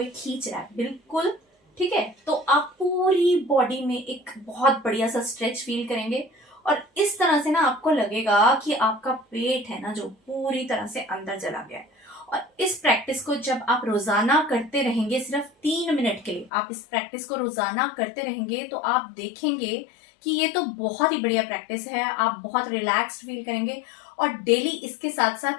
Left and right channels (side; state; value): right; drops out; at 16.5 s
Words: खींच रहा है, बिल्कुल, ठीक है। तो आप पूरी बॉडी में एक बहुत बढ़िया सा स्ट्रेच फील करेंगे और इस तरह से ना आपको लगेगा कि आपका पेट है ना जो पूरी तरह से अंदर चला गया है। और इस प्रैक्टिस को जब आप रोजाना करते रहेंगे, सिर्फ 3 मिनट के लिए आप इस प्रैक्टिस को रोजाना करते रहेंगे, तो आप देखेंगे कि ये तो बहुत ही बढ़िया प्रैक्टिस है, आप बहुत रिलैक्स्ड फील करेंगे। और डेली इसके साथ साथ